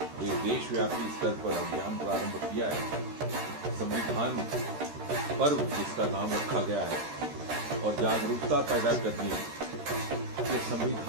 एक देशव्यापी स्तर पर अभियान प्रारंभ किया है। संविधान पर्व जिसका नाम रखा गया है और जागरूकता पैदा करनी कि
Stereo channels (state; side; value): late; left; 13 ms